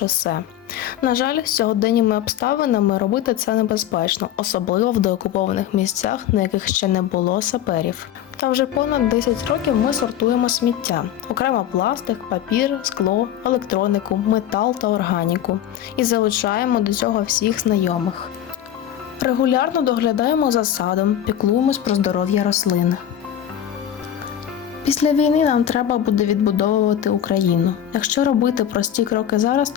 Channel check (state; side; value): quieter; right; 10.7 dB